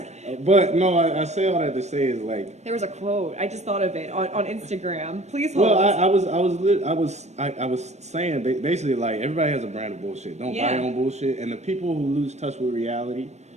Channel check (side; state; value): left; late; 0.32 ms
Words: But no, I say all that to say is like there was a quote I just thought of it on Instagram. Please hold. Well, I was saying basically like everybody has a brand of bullshit. Don't buy your own bullshit. And the people who lose touch with reality,